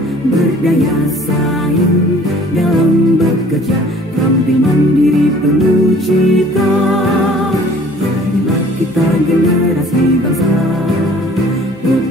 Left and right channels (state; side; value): normal; both; correlation 0.52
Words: berdaya saing dalam bekerja, tampil mandiri penuh cita. Jadilah kita generasi bangsa,